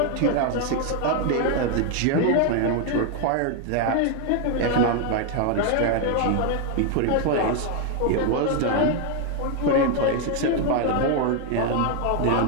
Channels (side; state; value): both; different; correlation 0.00